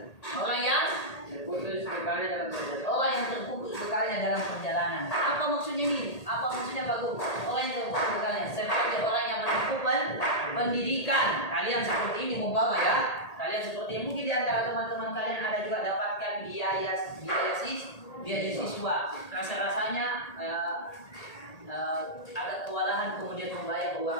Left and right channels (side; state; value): right; late; 1.8 ms